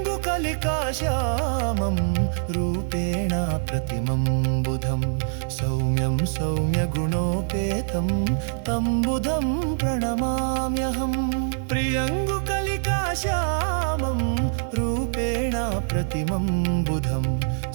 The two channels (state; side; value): silent; left; 62 dB below the other